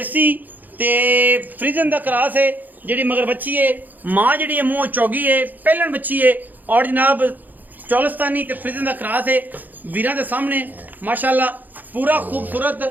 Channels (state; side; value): late; left; 0.084 ms